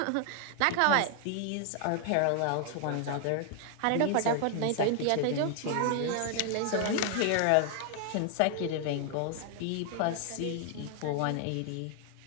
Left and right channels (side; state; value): both; different; correlation 0.00